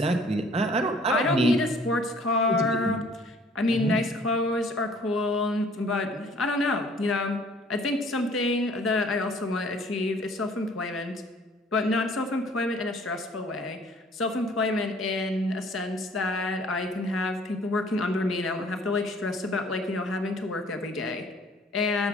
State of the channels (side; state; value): both; normal; correlation 0.55